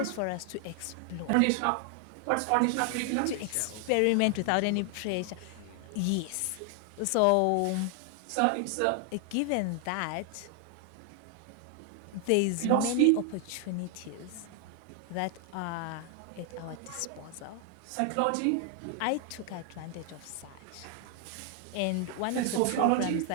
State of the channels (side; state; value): both; different; correlation 0.00